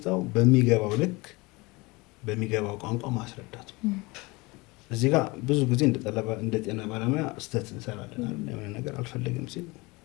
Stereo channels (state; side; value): quieter; right; 24.3 dB